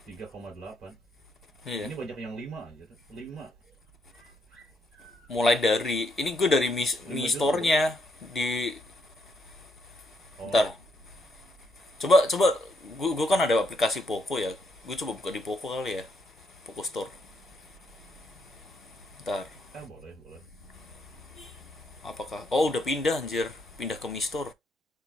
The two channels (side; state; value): both; normal; correlation 0.76